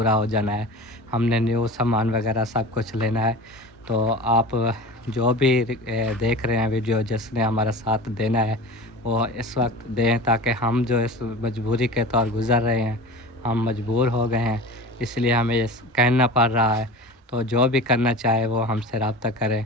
हो जाना है। हमने न्यू सामान वगैरह सब कुछ लेना है। तो आप जो भी देख रहे हैं वीडियो, जिसने हमारा साथ देना है वो इस वक्त दें, ताकि हम जो इस मजबूरी के तौर गुज़र रहे हैं, हम मजबूर हो गए हैं, इसलिए हमें ये कहना पड़ रहा है। तो जो भी करना चाहे वो हमसे रब्ता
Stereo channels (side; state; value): both; normal; correlation 0.34